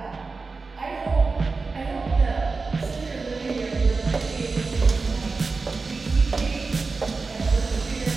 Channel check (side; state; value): left; quieter; 4.2 dB